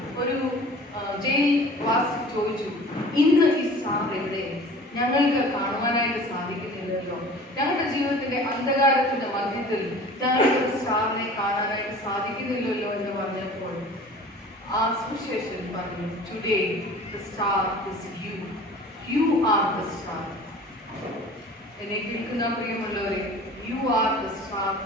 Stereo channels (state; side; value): normal; both; correlation 0.44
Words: ഒരു ജയിൽ വാസി ചോദിച്ചു, ഇന്ന് ഈ സ്റ്റാർ എവിടെ? ഞങ്ങൾക്ക് കാണുവാനായിട്ട് സാധിക്കുന്നില്ലല്ലോ. ഞങ്ങളുടെ ജീവിതത്തിന്റെ അന്ധകാരത്തിന്റെ മധ്യത്തിൽ ഞങ്ങൾക്ക് സ്റ്റാറിനെ കാണാനായിട്ട് സാധിക്കുന്നില്ലല്ലോ എന്ന് പറഞ്ഞപ്പോൾ ആ സുവിശേഷൻ പറഞ്ഞു, today the star is you. You are the star. എന്നെ കേൾക്കുന്ന പ്രിയമുള്ളവരെ, യു ആർ ദ സ്റ്റാർ